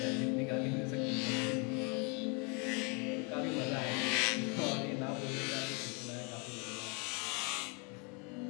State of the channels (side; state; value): right; quieter; 33.4 dB